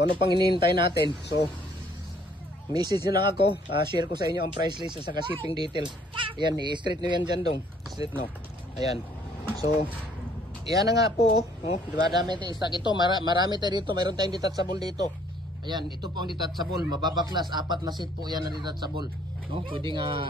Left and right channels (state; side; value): normal; both; correlation 0.62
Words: ano pang hinihintay natin? So message nyo lang ako, share ko sa inyo ang price list at saka shipping details. Ayan, i-straight nyo yan dyan dong. Straight no. Ayan. So, yan na nga po. Oh, diba, dami tayong stock. Ito, marami tayo dito. Mayroon tayong detachable dito. Ayan, ito po ang detachable. Mababaklas. 4 na set po yan na detachable. No? Pwede